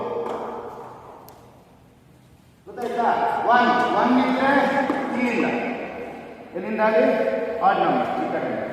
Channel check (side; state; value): both; identical; correlation 1.00